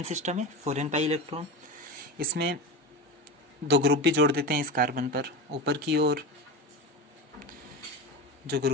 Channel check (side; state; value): both; normal; correlation 0.24